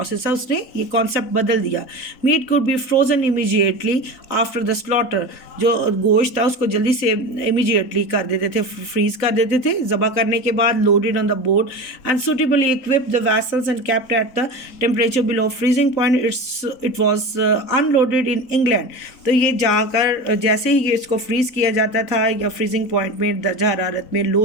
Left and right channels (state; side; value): late; right; 3.9 ms